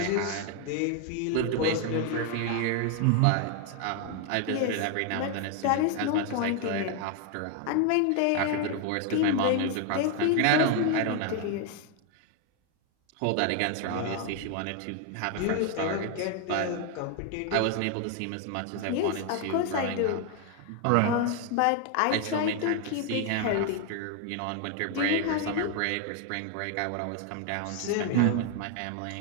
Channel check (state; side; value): different; both; correlation 0.01